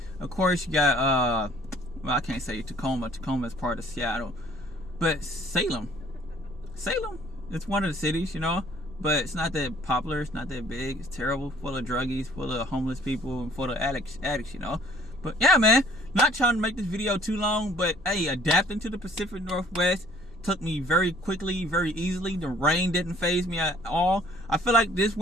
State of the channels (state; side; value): noise; right; rumble, 23 dB below the sound